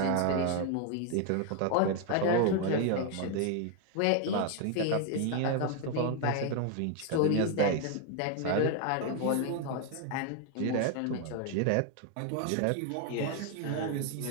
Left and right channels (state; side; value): different; both; correlation 0.01